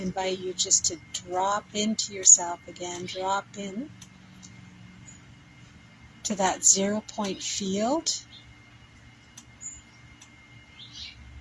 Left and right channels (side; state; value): both; identical; correlation 1.00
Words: invite you just to drop into yourself again. Drop in to that 0 point field,